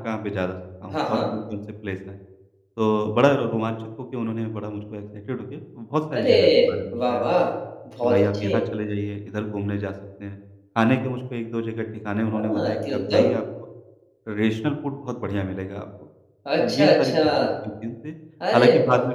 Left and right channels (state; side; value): identical; both; correlation 1.00